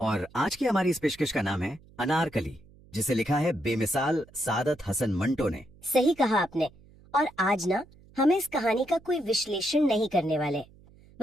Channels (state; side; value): noise; right; hum, 25 dB below the sound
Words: और आज की हमारी इस पेशकश का नाम है अनारकली, जिसे लिखा है बेमिसाल सादत हसन मंटो ने। सही कहा आपने। और आज ना हम इस कहानी का कोई विश्लेषण नहीं करने वाले।